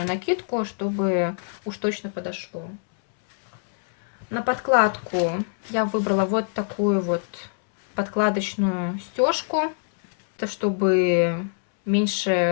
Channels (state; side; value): silent; right; 62 dB below the other